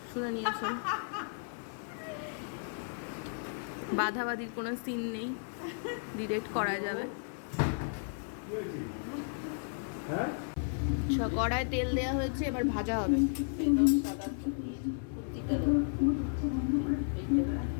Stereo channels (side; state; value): right; silent; 55 dB below the other